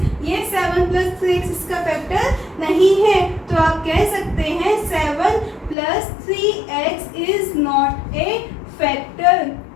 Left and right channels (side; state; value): right; drops out; at 5.8 s